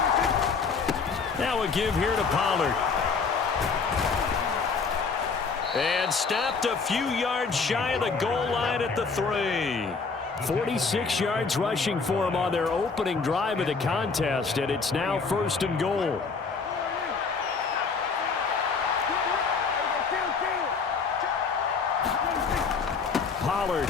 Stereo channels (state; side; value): quieter; right; 4.9 dB